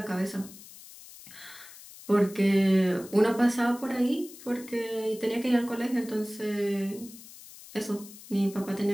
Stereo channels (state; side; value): noise; left; hiss, 18 dB below the sound